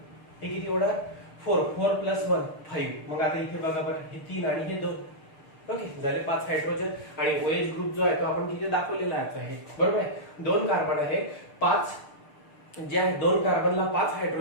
हे किती होणार, 4 4 प्लस 1 5. मग आता इथे बघा बरं, हे 3 आणि हे 2. ओके, झाले 5 हायड्रोजन आणि OH ग्रुप जो आहे तो आपण तिथे दाखवलेला आहे, बरोबर आहे. 2 कार्बन आहे, 5 जे आहे 2 कार्बनला 5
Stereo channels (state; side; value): late; right; 6.7 ms